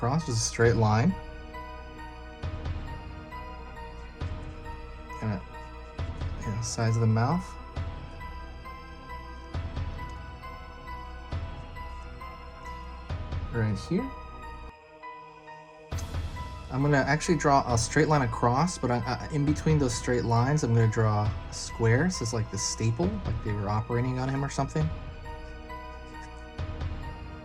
just a straight line. Kind of, sides of the mouth. Right here. I'm gonna actually draw a straight line across, but in between those straight lines, I'm gonna draw a square. So it's like the staple, like they were operating on him or something.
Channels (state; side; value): identical; both; correlation 1.00